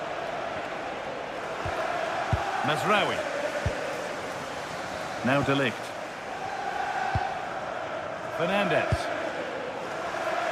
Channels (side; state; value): both; identical; correlation 1.00